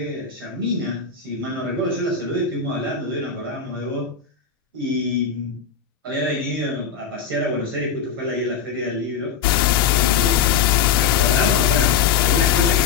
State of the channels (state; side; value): quieter; right; 6.8 dB